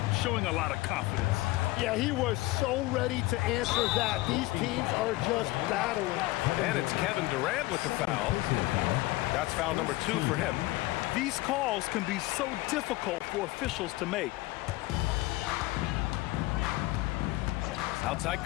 showing a lot of confidence. Yeah, he was so ready to answer that. These teams are just battling. And it's Kevin Durant with the foul. That's foul number 2 for him. These calls can be so difficult for officials to make. Outside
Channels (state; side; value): quieter; right; 19.4 dB